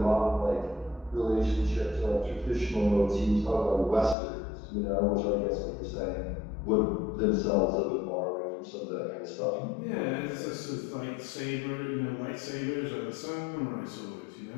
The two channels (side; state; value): right; drops out; at 4.2 s